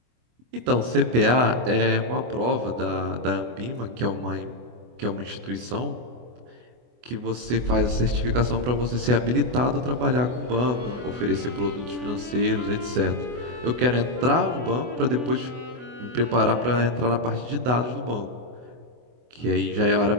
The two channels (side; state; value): left; late; 24 ms